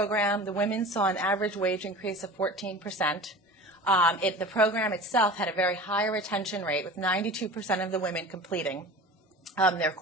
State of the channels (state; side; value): normal; both; correlation 0.37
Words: the women saw an average wage increase of 14%. The program itself had a very high retention rate, with 92% of the women completing their